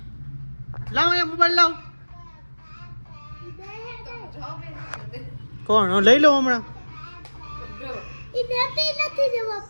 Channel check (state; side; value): inverted; both; correlation -1.00